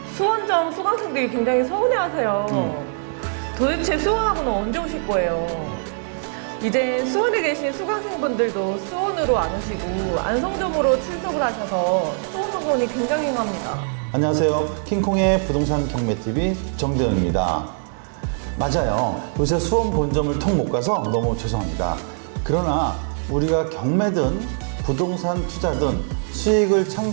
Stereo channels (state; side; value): silent; left; 58 dB below the other